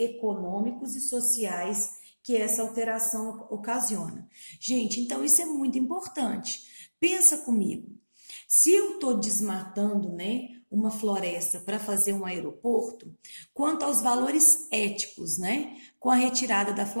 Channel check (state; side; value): inverted; both; correlation -1.00